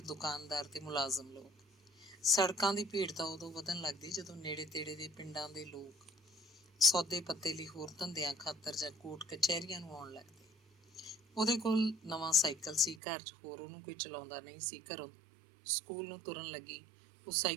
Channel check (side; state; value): left; drops out; at 13.0 s